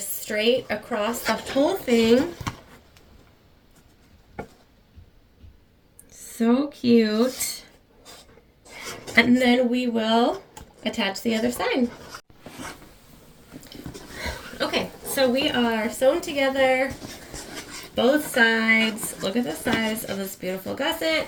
across the whole thing. So cute. And then we will attach the other side. Okay, so we are sewn together both sides. Look at the size of this beautiful gusset.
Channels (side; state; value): both; identical; correlation 1.00